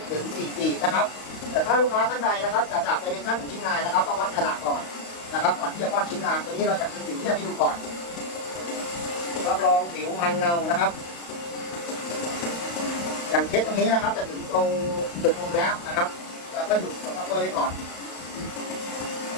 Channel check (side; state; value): right; late; 35 ms